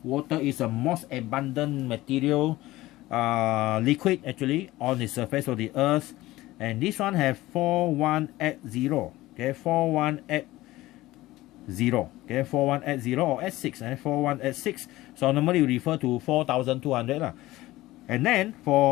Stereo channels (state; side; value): quieter; right; 17.6 dB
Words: is the most abundant material, liquid actually, on the surface of the earth, and this one have 4180, okay, 4180, okay, 4180 or S6, and 4186. So normally we refer to 4200 And then